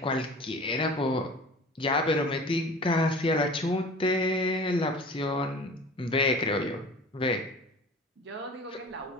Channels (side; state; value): both; normal; correlation 0.41